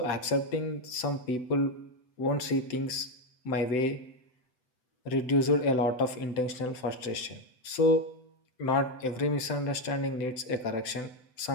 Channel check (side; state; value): right; late; 7.9 ms